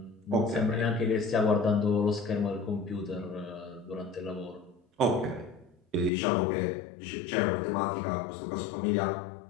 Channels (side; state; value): right; drops out; at 6.1 s